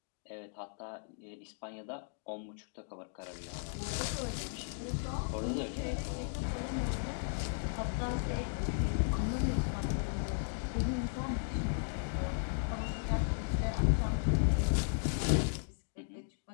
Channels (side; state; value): right; silent; digital silence